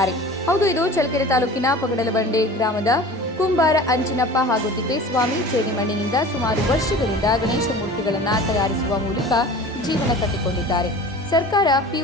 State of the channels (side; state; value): both; normal; correlation 0.40